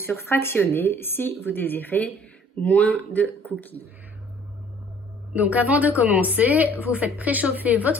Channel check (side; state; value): both; normal; correlation 0.55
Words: fractionnés si vous désirez moins de cookies. Donc avant de commencer, vous faites préchauffer